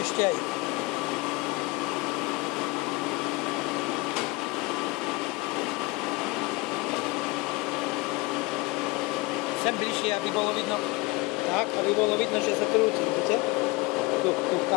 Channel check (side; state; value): right; quieter; 23.5 dB